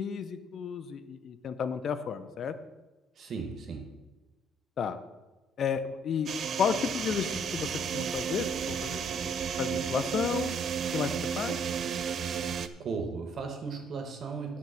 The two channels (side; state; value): both; normal; correlation 0.64